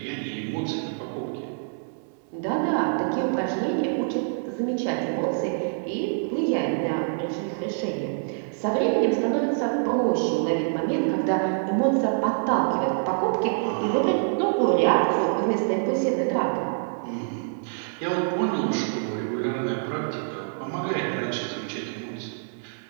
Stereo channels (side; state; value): left; silent; digital silence